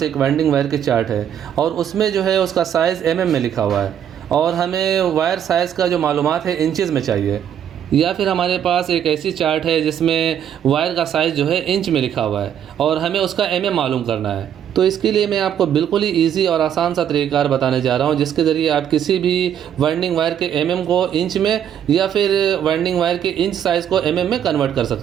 एक वेल्डिंग वायर की चार्ट है और उसमें जो है उसका साइज़ में लिखा हुआ है और हमें वायर साइज़ का जो मालूमात है इंचज़ में चाहिए। या फिर हमारे पास एक ऐसी चार्ट है जिसमें वायर का साइज़ जो है इंच में लिखा हुआ है और हमें उसका मालूम करना है। तो इसके लिए मैं आपको बिल्कुल ही ईजी और आसान सा तरीक़ार बताने जा रहा हूँ, जिसके ज़रिए आप किसी भी वाइंडिंग वायर के को इंच में या फिर वाइंडिंग वायर के इंच साइज़ को में कन्वर्ट कर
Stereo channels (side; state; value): left; quieter; 9.4 dB